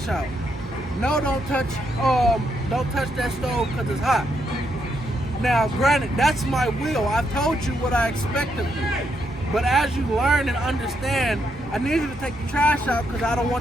out. No, don't touch that stove because it's hot. Now, granted, that's my will. I've told you what I expect of you. But as you learn and understand, I need you to take the trash out because I don't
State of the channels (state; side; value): normal; both; correlation 0.78